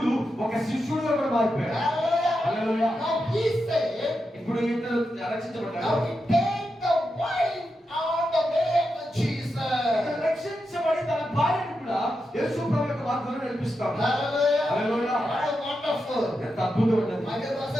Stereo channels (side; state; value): both; normal; correlation 0.87